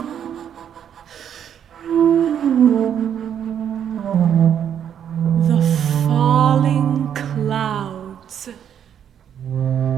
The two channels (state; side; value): quieter; left; 9.0 dB